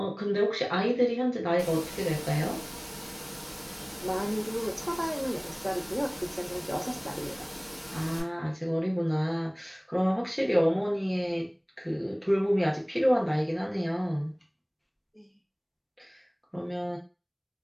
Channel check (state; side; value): identical; both; correlation 1.00